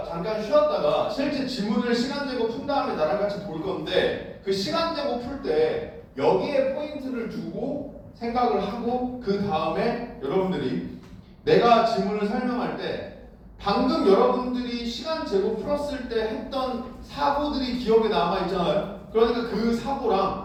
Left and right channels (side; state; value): both; identical; correlation 1.00